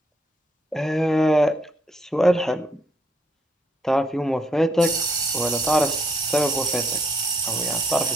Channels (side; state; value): both; normal; correlation 0.72